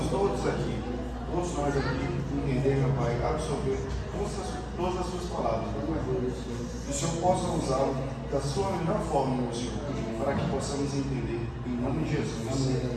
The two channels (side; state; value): both; identical; correlation 1.00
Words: todos nós aqui, entender, meu Pai, absorver todas as suas palavras, meu Pai. Que o Senhor possa usá-lo da sua melhor forma, meu Senhor, para que possamos entender, em nome de Jesus.